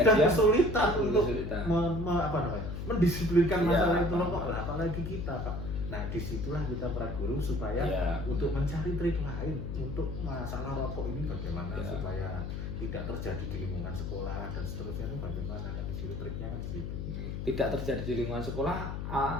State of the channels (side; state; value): left; noise; hum, 5 dB below the sound